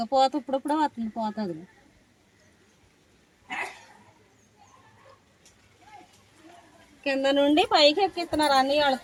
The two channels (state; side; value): identical; both; correlation 1.00